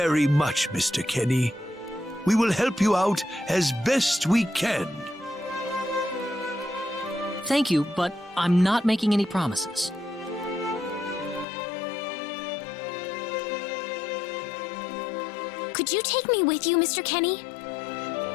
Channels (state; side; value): drops out; right; at 11.5 s